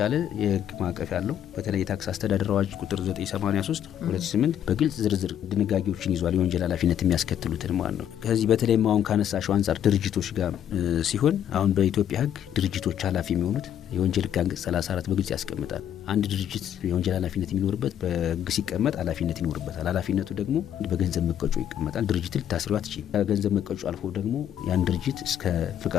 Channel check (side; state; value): right; quieter; 10.0 dB